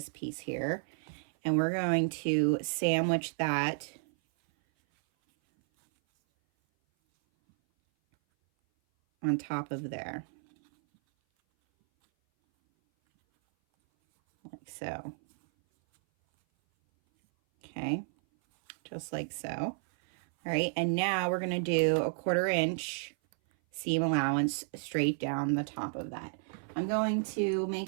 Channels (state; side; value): silent; left; 56 dB below the other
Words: piece here. And we're going to sandwich that on top of there, like so. Okay, just like so. All right, and now we're going to do a 1/4 inch seam allowance straight down the top of that. I'm going to make